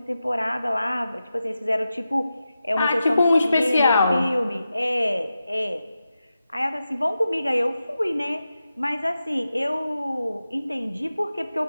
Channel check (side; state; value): both; inverted; correlation -0.91